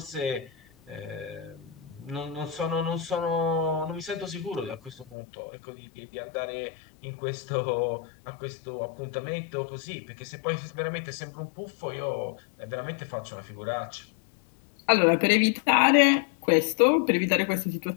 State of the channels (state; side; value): drops out; right; at 5.2 s